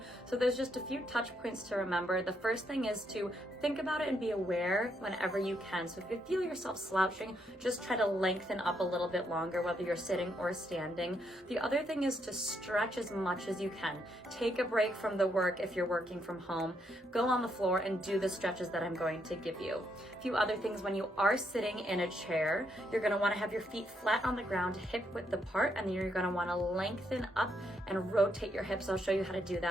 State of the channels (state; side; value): normal; both; correlation 0.76